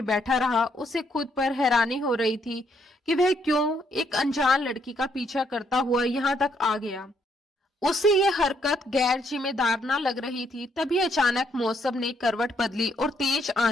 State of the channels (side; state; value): both; normal; correlation 0.72